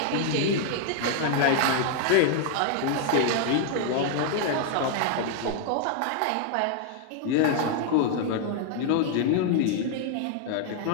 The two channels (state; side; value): different; both; correlation 0.00